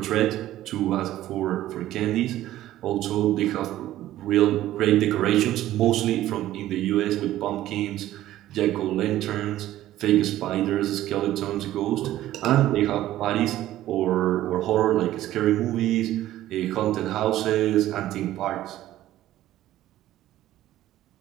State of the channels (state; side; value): quieter; left; 14.1 dB